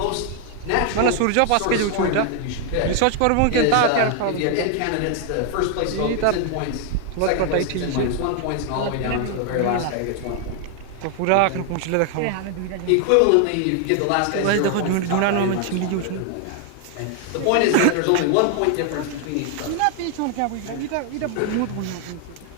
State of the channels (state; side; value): different; both; correlation 0.00